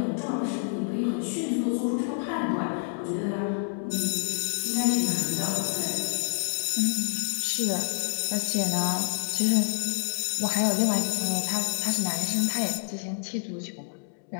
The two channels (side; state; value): right; silent; digital silence